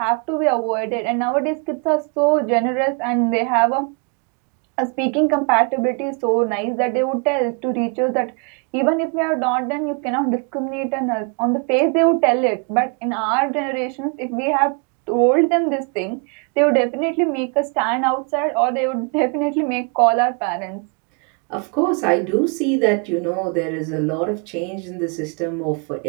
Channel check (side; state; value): left; quieter; 36.4 dB